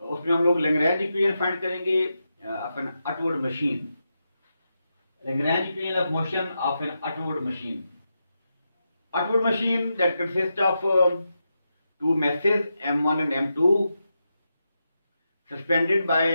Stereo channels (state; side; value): inverted; both; correlation -0.87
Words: हम लोग लैग्रेंज इक्वेशन फाइंड करेंगे of an upward machine. Lagrange equation of motion of an upward machine. Upward machine that consists of two masses m1 and m2 suspended by